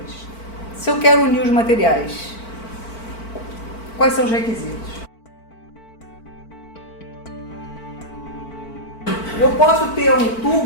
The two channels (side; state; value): right; late; 4.5 ms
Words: Se eu quero unir os materiais, quais são os requisitos? Eu posso ter um